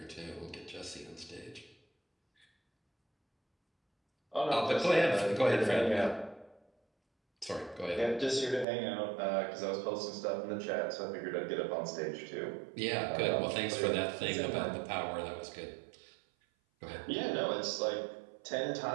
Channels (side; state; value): left; drops out; at 8.7 s